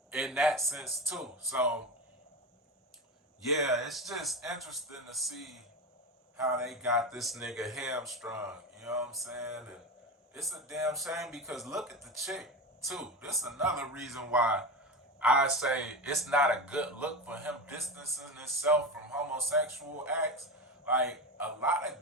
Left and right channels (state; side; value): normal; both; correlation 0.22